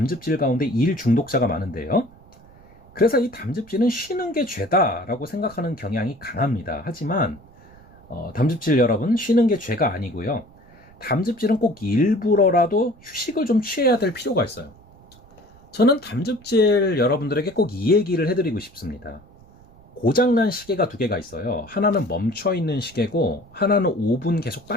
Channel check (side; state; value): right; noise; rumble, 25 dB below the sound